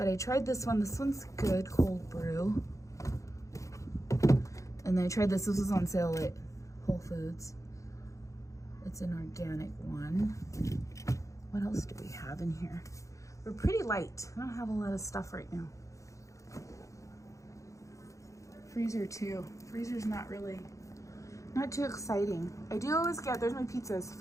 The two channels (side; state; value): right; late; 0.15 ms